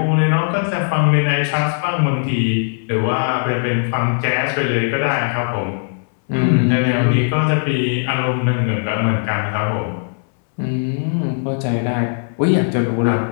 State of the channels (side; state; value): right; silent; 67 dB below the other